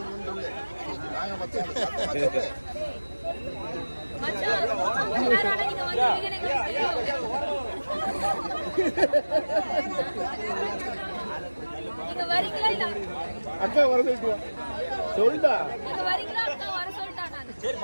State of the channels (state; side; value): inverted; both; correlation -1.00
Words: அக்கா வர சொல்லிட்டா.